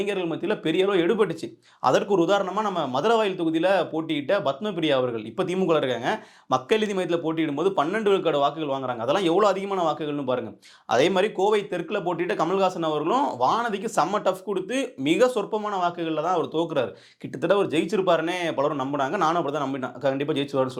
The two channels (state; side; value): identical; both; correlation 1.00